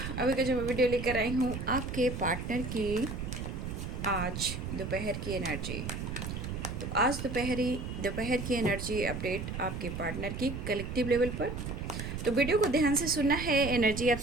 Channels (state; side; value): noise; right; rumble, 5 dB below the sound